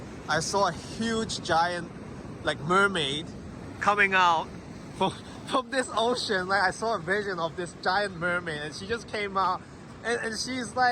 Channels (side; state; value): both; identical; correlation 1.00